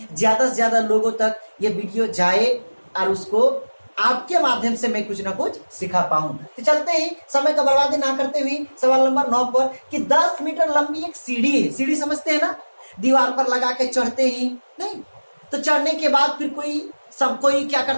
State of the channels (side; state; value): both; inverted; correlation -1.00